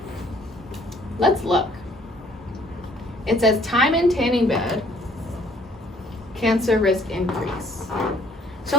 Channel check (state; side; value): normal; both; correlation 0.60